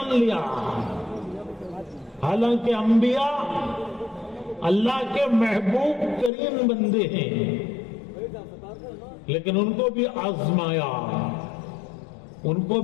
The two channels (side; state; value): right; drops out; at 6.3 s